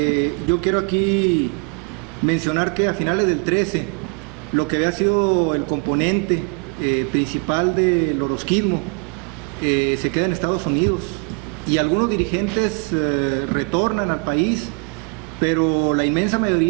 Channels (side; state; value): left; quieter; 33.7 dB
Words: yo quiero aquí mencionar que a finales del 13, lo que había sido el componente principal del orozquismo se queda en Estados Unidos y algunos dirigentes retornan al país, pero la inmensa